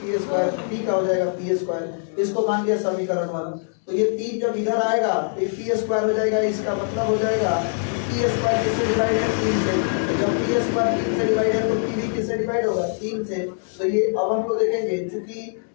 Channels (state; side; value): silent; right; 63 dB below the other